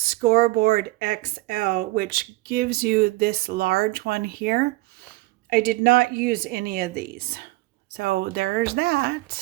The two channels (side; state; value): left; quieter; 20.6 dB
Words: XL, which gives you this large one here. I did not use any of these. So there's